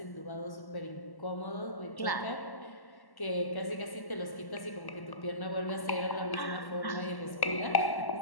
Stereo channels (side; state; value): right; late; 1.1 ms